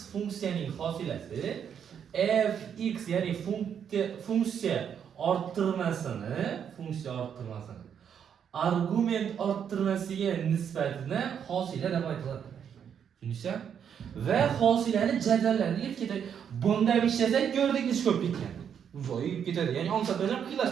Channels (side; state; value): left; quieter; 8.1 dB